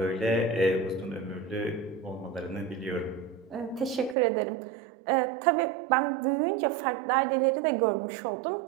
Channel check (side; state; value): left; drops out; at 4.2 s